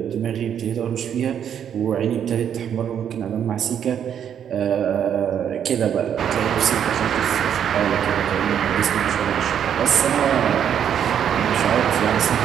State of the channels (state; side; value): quieter; left; 8.9 dB